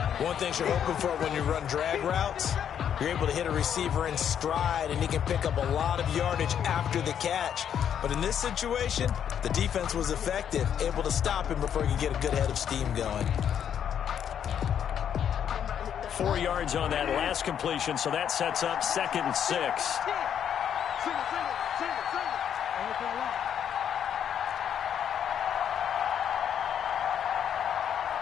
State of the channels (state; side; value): quieter; right; 8.9 dB